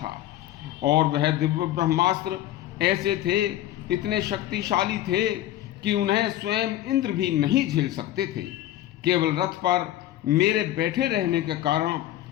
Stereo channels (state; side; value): quieter; right; 13.7 dB